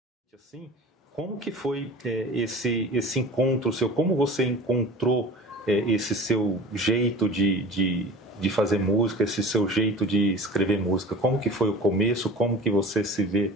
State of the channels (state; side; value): normal; both; correlation 0.39